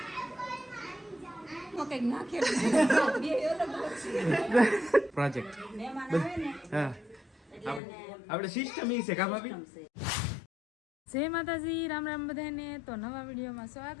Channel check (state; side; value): drops out; right; at 7.8 s